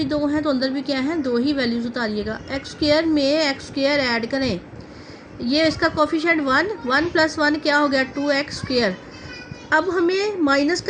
2 हैं तो अंदर भी क्या है, 2 ही वैल्यूज़ उतारिएगा। x स्क्वायर में x स्क्वायर ऐड करें, ये इसका कोफिशिएंट 1 प्लस 1 क्या हो गया, 2x स्क्वायर। अब हमें माइनस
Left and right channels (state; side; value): identical; both; correlation 1.00